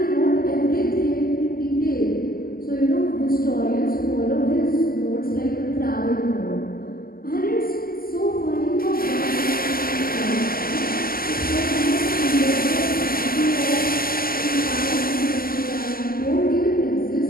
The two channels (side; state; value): right; late; 0.42 ms